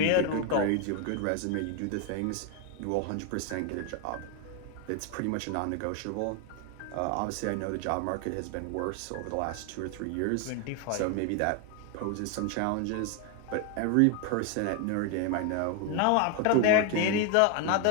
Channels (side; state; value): both; different; correlation 0.01